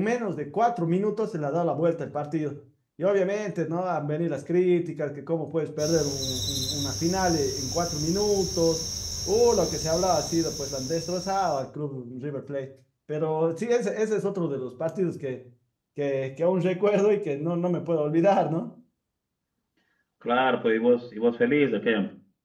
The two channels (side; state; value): both; identical; correlation 1.00